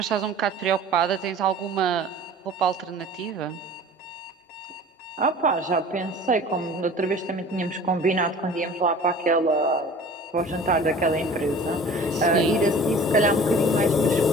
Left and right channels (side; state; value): both; normal; correlation 0.44